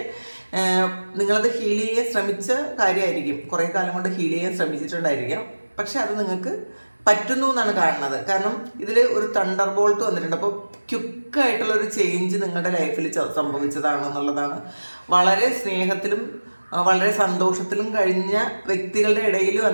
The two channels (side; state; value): both; inverted; correlation -1.00